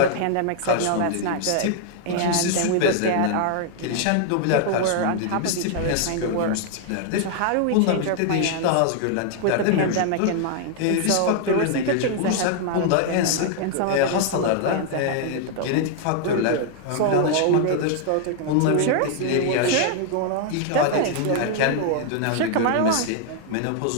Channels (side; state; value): both; different; correlation 0.00